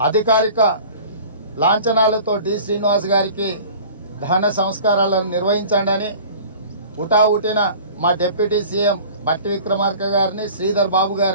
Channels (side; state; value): both; inverted; correlation -0.44